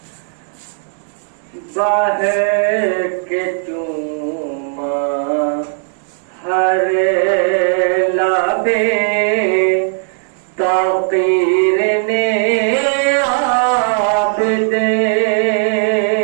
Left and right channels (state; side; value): silent; left; digital silence